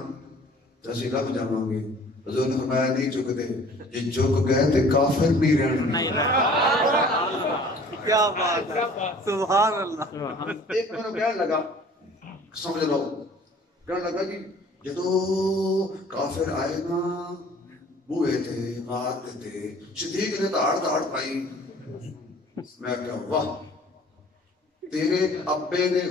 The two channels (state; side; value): normal; both; correlation 0.50